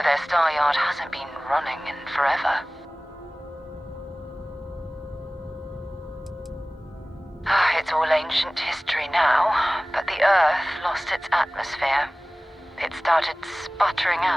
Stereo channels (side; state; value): both; normal; correlation 0.98